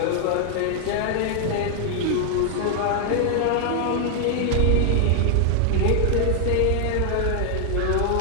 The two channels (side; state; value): both; different; correlation 0.00